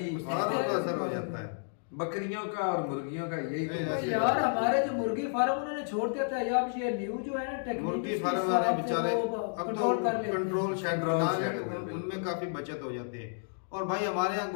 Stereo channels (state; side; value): silent; right; digital silence